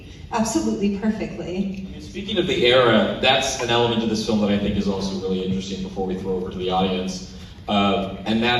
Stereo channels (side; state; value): both; identical; correlation 1.00